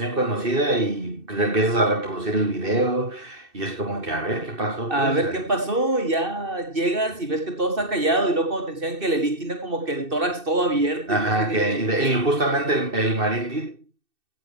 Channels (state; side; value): late; left; 2.6 ms